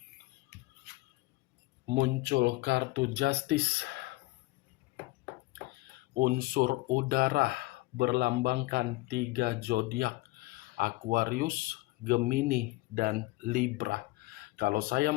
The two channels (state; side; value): quieter; right; 20.9 dB